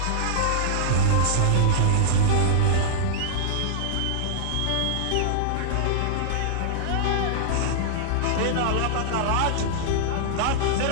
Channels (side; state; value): both; different; correlation -0.01